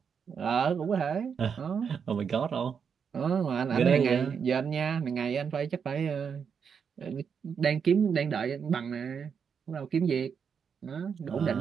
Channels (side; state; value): left; quieter; 6.7 dB